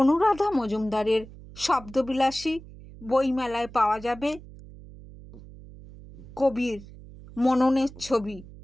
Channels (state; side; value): noise; right; hum, 18 dB below the sound